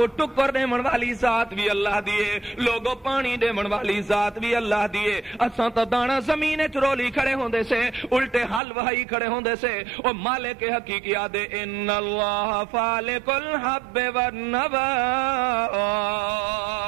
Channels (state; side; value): drops out; left; at 8.6 s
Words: ٹکر دیمن والی ذات بھی اللہ دیے لوگو پانی دیمن والی ذات بھی اللہ دیے اساں تا دانا زمین چرولی کھڑے ہوندے سے الٹے حل وہی کھڑے ہوندے سے او مالک حقیقی آدے ان اللہ فالق الحب والنوا